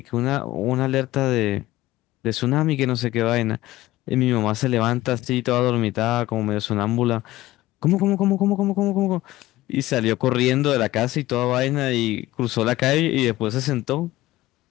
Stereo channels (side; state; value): right; quieter; 16.9 dB